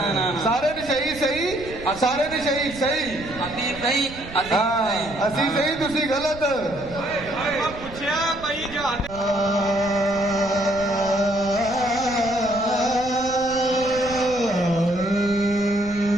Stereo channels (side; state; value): right; noise; rumble, 15 dB below the sound